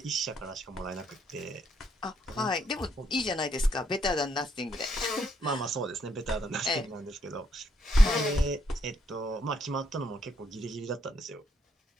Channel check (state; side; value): normal; both; correlation 0.74